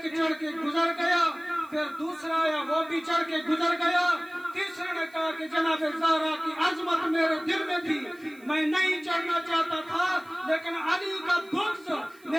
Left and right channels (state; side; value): noise; right; hiss, 27 dB below the sound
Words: چڑھ کے گزر گیا, پھر دوسرا آیا وہ بھی چڑھ کے گزر گیا. تیسرے نے کہا کہ جناب زہرا کی عظمت میرے دل میں تھی, میں نہیں چڑھنا چاہتا تھا لیکن علی کا بغض